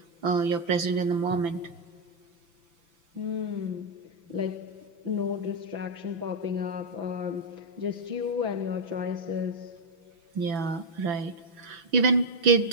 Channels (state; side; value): late; left; 6.0 ms